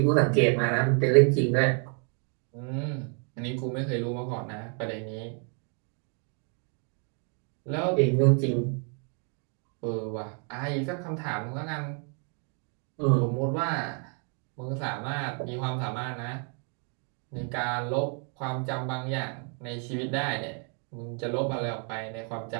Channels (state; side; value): quieter; left; 39.9 dB